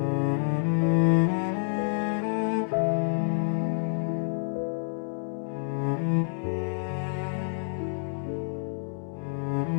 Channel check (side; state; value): right; silent; digital silence